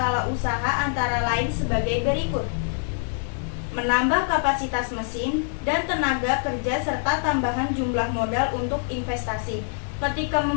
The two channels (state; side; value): silent; right; digital silence